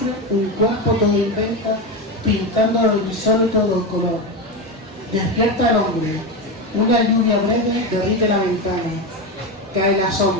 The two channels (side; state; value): both; normal; correlation 0.16